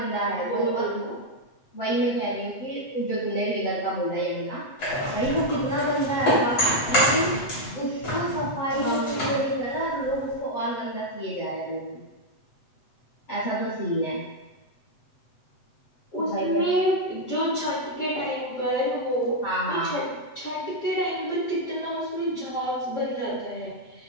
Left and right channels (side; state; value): right; late; 7.9 ms